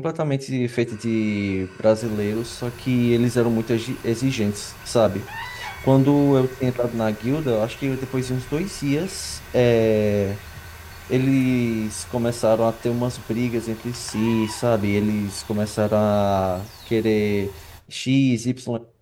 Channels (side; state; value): both; identical; correlation 1.00